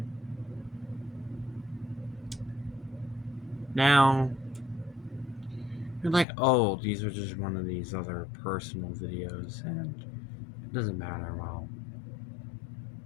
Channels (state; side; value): drops out; right; at 6.2 s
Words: Now, you're like, oh, these are just one of these other personal videos, and it doesn't matter. Well,